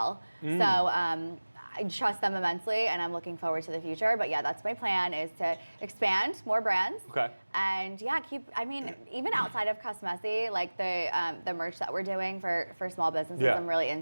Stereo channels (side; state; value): both; inverted; correlation -1.00